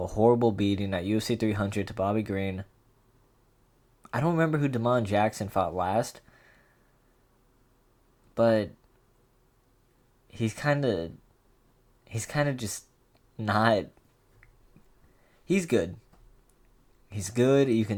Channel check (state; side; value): identical; both; correlation 1.00